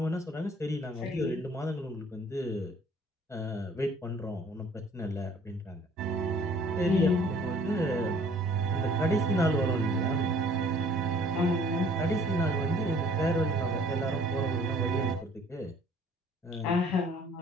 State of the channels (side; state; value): both; normal; correlation 0.56